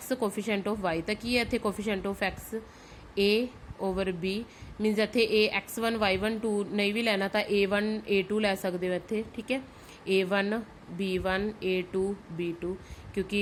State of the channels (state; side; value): identical; both; correlation 1.00